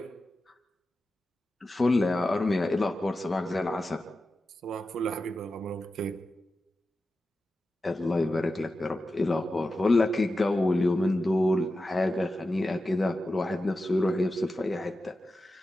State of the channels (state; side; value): normal; both; correlation 0.92